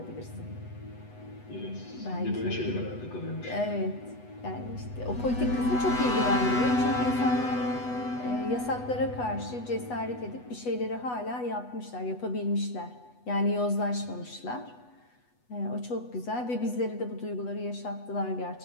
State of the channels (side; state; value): right; late; 8.1 ms